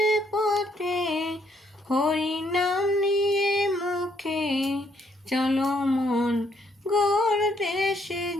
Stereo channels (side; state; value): both; normal; correlation 0.70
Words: পথে হরি নাম নিয়ে মুখে, চলো মন গোর দেশে